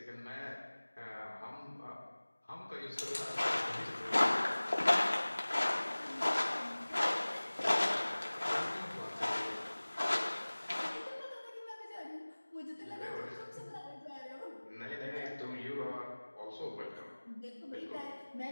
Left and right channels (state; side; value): inverted; both; correlation -1.00